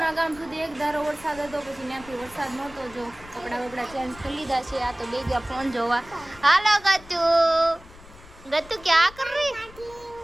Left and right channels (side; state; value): left; noise; rumble, 20 dB below the sound